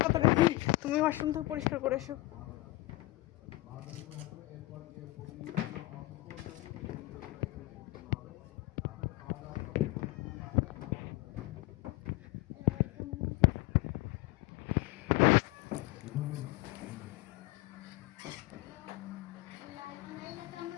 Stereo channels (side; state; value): right; quieter; 19.9 dB